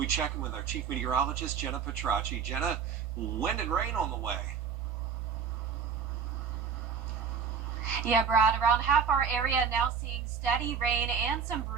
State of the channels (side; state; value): left; quieter; 6.5 dB